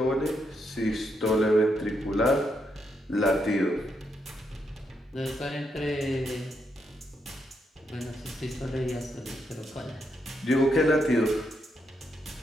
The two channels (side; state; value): both; normal; correlation 0.79